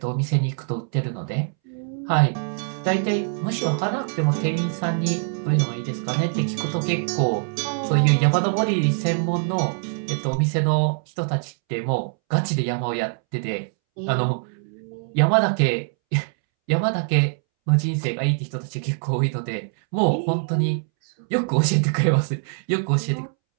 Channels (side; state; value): left; silent; 63 dB below the other